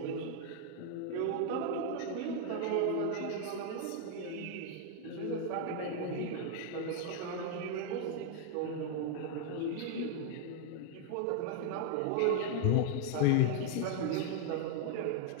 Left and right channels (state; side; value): different; both; correlation -0.01